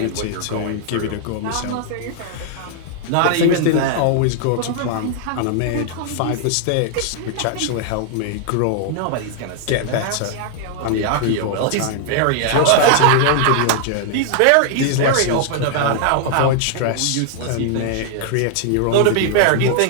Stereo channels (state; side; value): different; both; correlation 0.00